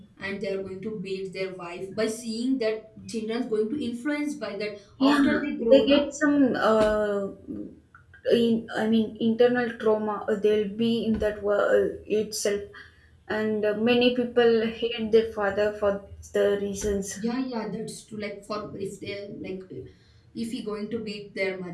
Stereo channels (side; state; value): both; identical; correlation 1.00